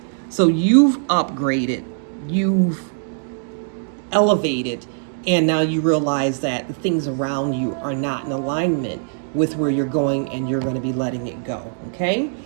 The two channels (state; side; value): silent; left; digital silence